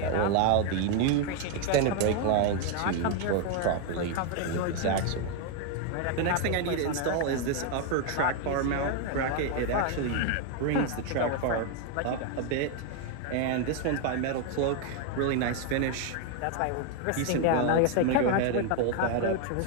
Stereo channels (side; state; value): both; different; correlation 0.01